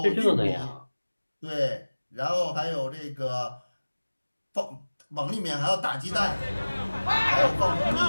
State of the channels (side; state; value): both; inverted; correlation -1.00